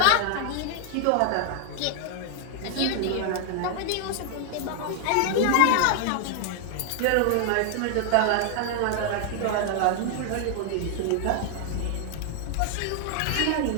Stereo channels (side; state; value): both; different; correlation 0.00